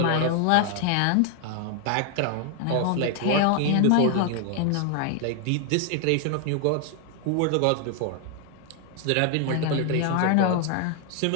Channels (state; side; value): different; both; correlation 0.00